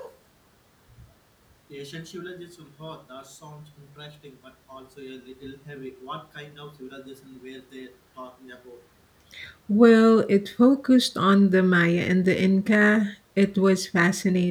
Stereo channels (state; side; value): identical; both; correlation 1.00